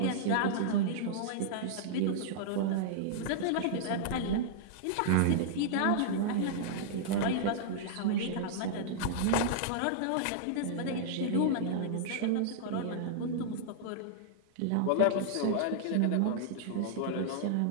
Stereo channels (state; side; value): different; both; correlation -0.02